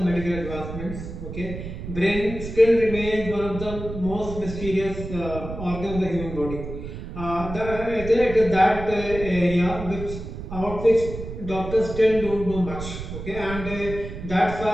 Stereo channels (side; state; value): right; noise; rumble, 9 dB below the sound